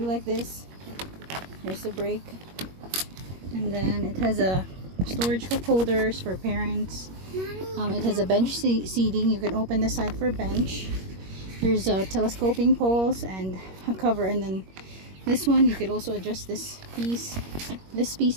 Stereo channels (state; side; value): late; left; 21 ms